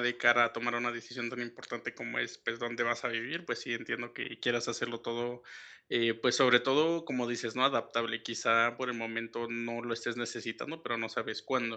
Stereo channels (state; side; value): identical; both; correlation 1.00